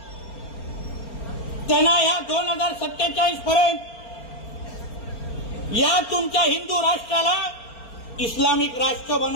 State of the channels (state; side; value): late; right; 4.4 ms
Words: त्यांना या 2047 पर्यंत या तुमच्या हिंदू राष्ट्राला इस्लामिक राष्ट्र